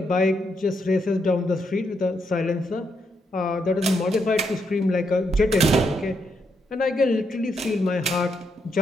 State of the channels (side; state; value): both; normal; correlation 0.79